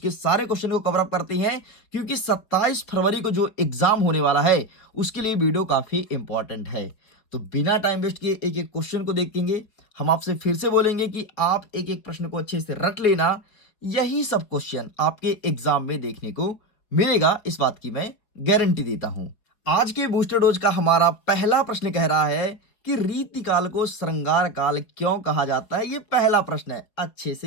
सारे क्वेश्चन को कवर अप करते हैं, क्योंकि 27 फरवरी को जो एग्जाम होने वाला है उसके लिए वीडियो काफी इंपॉर्टेंट है। तो बिना टाइम वेस्ट किए एक एक क्वेश्चन को देखेंगे। हम आपसे फिर से बोलेंगे कि आप एक एक प्रश्न को अच्छे से रट लेना। यही सब क्वेश्चन आपके एग्जाम में देखने को मिलेगा, इस बात की मैं गारंटी देता हूं। आज के बूस्टर डोज का हमारा पहला प्रश्न कह रहा है कि रीतिकाल को श्रृंगार काल क्यों कहा जाता है। ये पहला प्रश्न है, अच्छे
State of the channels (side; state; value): right; late; 4.5 ms